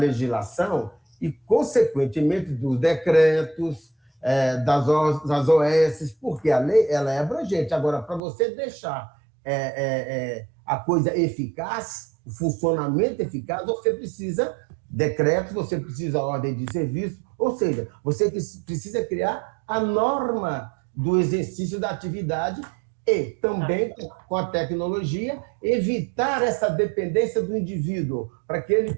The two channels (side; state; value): left; drops out; at 8.2 s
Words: e, consequentemente, dos decretos, das OS, porque a lei ela é abrangente. Agora, para você deixar a coisa eficaz, o funcionamento eficaz, você precisa decretos, você precisa ordem de serviço, ou seja, você precisa criar a norma do exercício da atividade e também, com a tecnologia, evitar essa dependência do indivíduo, para que ele